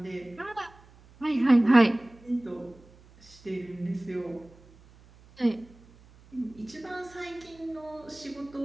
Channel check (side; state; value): right; noise; hum, 25 dB below the sound